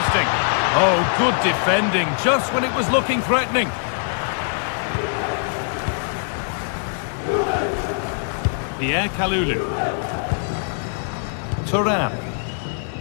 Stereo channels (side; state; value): right; silent; digital silence